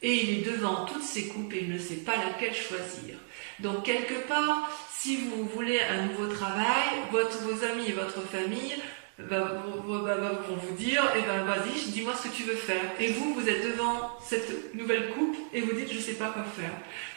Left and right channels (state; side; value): silent; left; digital silence